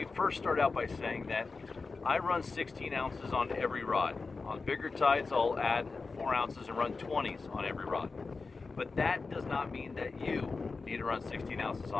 first start out by saying that I run 16 ounces on every rod. On bigger tides, I'll add 4 ounces and run 20s on every rod. But that does not mean that you need to run 16 ounces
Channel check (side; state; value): right; quieter; 4.2 dB